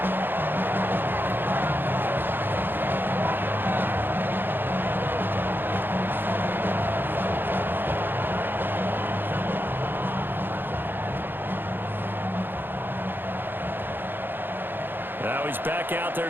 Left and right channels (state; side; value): late; left; 0.098 ms